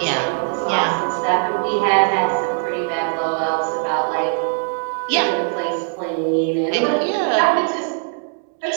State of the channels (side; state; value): left; silent; 59 dB below the other